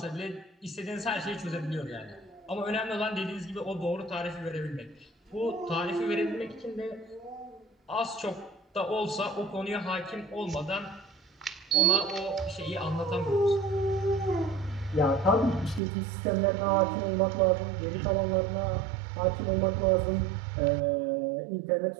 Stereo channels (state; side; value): drops out; left; at 15.8 s